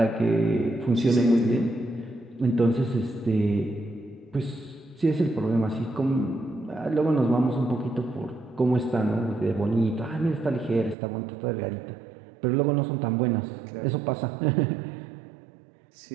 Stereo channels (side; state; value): left; drops out; at 11.0 s